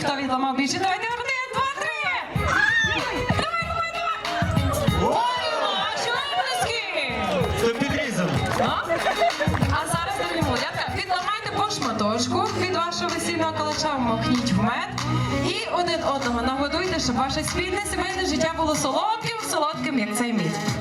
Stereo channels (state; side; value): identical; both; correlation 1.00